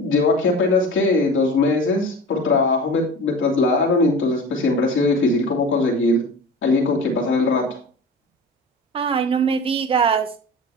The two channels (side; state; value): both; normal; correlation 0.35